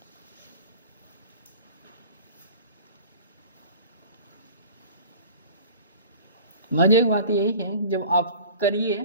मजे की बात यही है, जब आप करिए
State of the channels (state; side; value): inverted; both; correlation -0.42